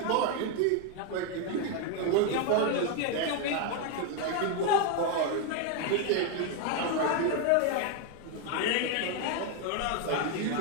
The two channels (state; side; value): different; both; correlation 0.01